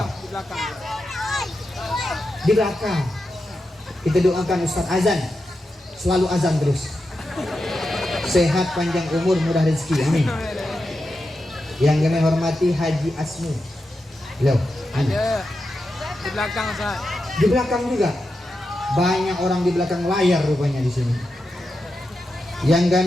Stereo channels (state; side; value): normal; both; correlation 0.89